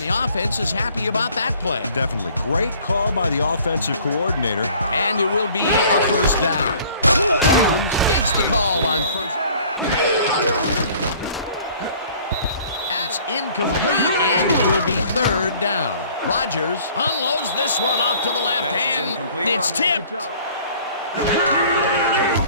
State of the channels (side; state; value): both; inverted; correlation -0.53